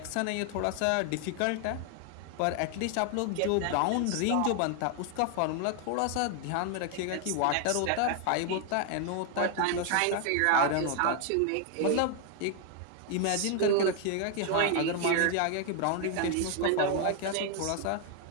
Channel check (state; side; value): different; both; correlation 0.00